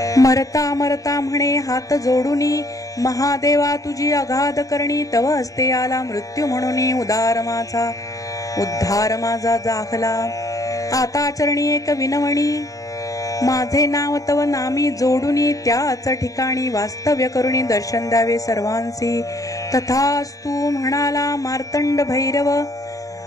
मरता मरता म्हणे हात जोडूनी, महादेवा तुझी अगाध करणी. तव हस्ते आला मृत्यू म्हणून उद्धार माझा जाखला. आता चरणी एक विनवणी, माझे नाव तव नामी जोडूनी. त्याच ठिकाणी वास्तव्य करुणी दर्शन द्यावे सर्वांसी. तथास्तु म्हणाला मार्तंड भैरव.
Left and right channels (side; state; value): right; late; 0.17 ms